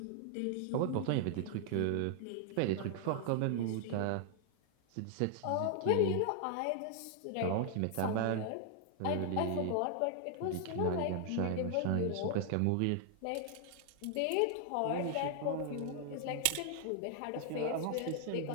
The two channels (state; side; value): different; both; correlation 0.00